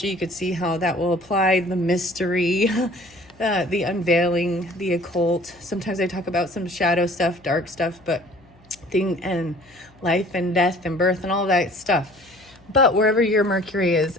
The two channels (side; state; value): left; noise; hum, 28 dB below the sound